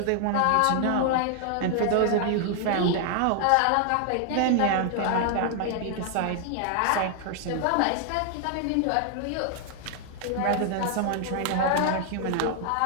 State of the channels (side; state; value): both; different; correlation 0.00